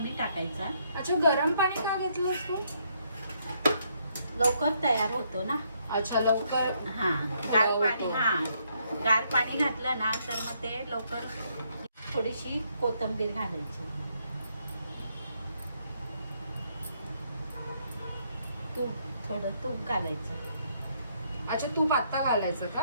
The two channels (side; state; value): both; inverted; correlation -0.73